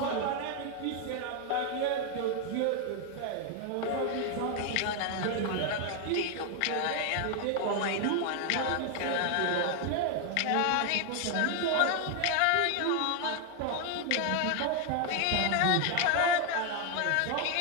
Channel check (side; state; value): both; different; correlation 0.01